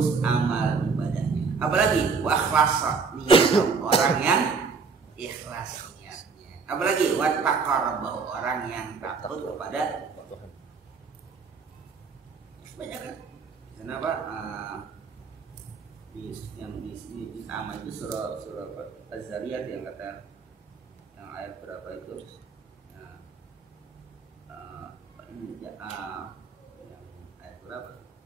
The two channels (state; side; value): quieter; left; 5.1 dB